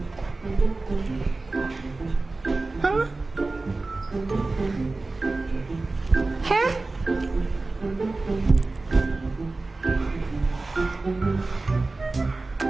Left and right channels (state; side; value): quieter; left; 3.4 dB